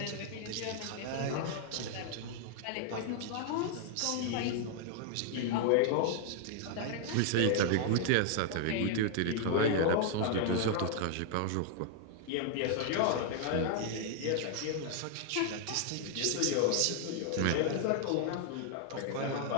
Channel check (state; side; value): different; both; correlation 0.00